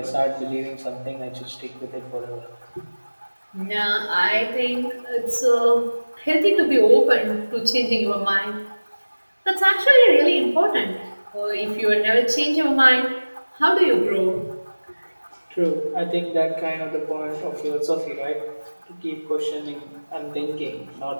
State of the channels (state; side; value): inverted; both; correlation -1.00